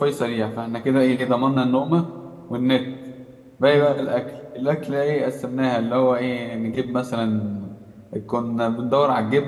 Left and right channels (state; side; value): identical; both; correlation 1.00